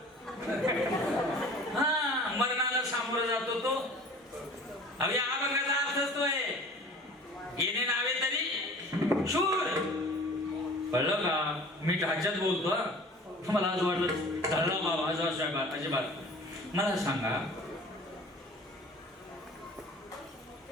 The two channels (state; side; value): normal; both; correlation 0.45